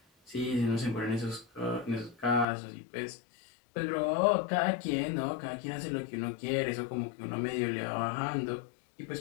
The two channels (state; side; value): drops out; right; at 2.5 s